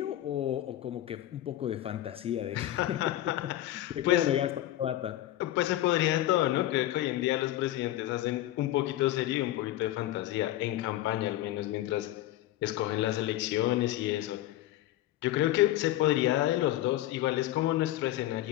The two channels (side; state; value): right; quieter; 14.3 dB